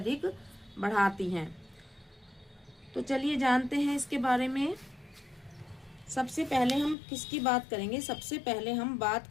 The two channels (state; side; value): drops out; right; at 7.0 s